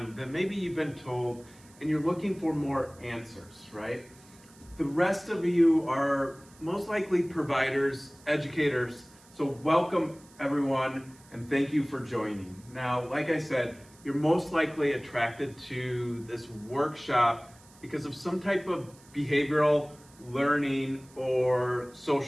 than maybe you've been told, and you're looking for more answers, right? The rest of you are most likely providers, educators, so welcome everyone and thank you for joining. Now, like I said, you're most likely attracted to this workshop because of some type of behavioral learning or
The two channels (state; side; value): noise; right; hiss, 26 dB below the sound